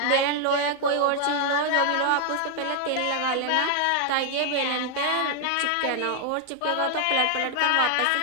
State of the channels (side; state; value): both; different; correlation 0.00